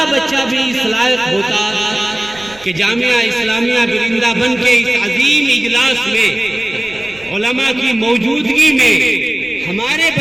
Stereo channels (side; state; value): right; noise; rumble, 23 dB below the sound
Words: बच्चा भी इस लायक होता कि जामिया इस्लामिया बिरिंदाबन के इस अजीम इजलास में उलमा की मौजूदगी में हमारे